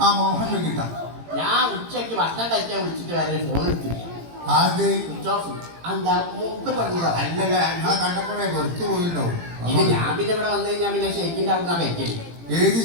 മോഹൻ വെങ്കിട്ട. ഞാൻ ഉച്ചയ്ക്ക് ഭക്ഷണം കഴിക്കാൻ വിളിച്ചിട്ട് വരെ ഫോൺ എടുത്തില്ല. Switch off. എന്താ മൂപ്പര് പറഞ്ഞതാ? അല്ലല്ല, ഞാൻ കണ്ടപ്പോഴേ വെറുത്തു പോയിട്ടുണ്ടാവും. ഇത് ഞാൻ പിന്നെ ഇവിടെ വന്നു കഴിഞ്ഞാൽ പിന്നെ ഷെയ്ക്കിന്റെ അവിടെ നിന്നാ കഴിക്കല്. ഏത്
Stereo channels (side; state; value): left; late; 18 ms